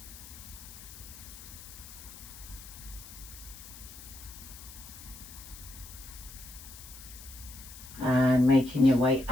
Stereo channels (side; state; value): left; noise; hiss, 15 dB below the sound